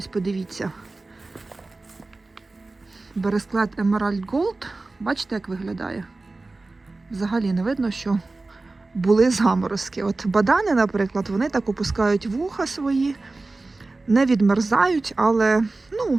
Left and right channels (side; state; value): left; quieter; 3.3 dB